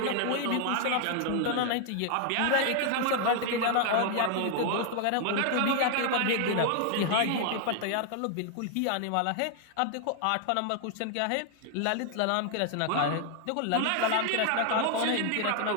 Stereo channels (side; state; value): both; different; correlation 0.00